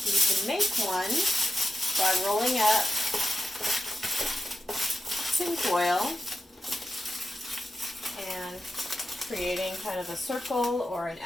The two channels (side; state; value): both; normal; correlation 0.93